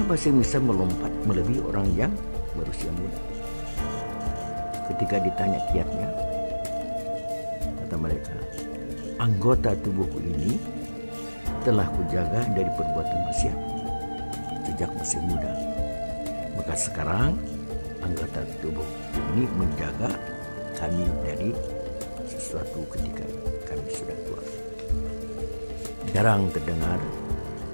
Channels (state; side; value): inverted; both; correlation -1.00